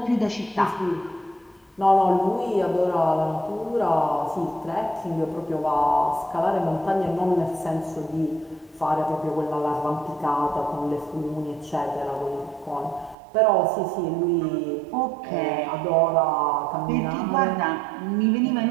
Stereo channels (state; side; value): drops out; left; at 13.2 s